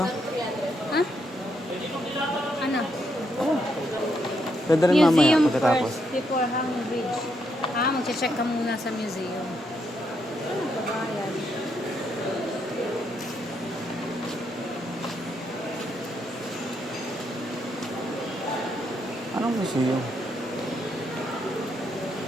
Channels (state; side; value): normal; both; correlation 0.77